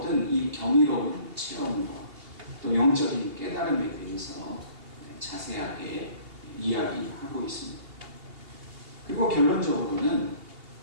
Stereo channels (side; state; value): left; late; 2.8 ms